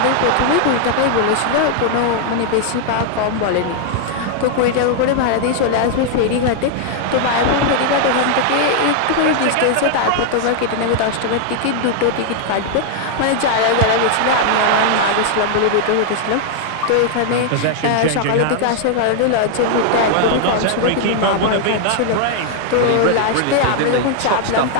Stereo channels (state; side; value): different; both; correlation 0.00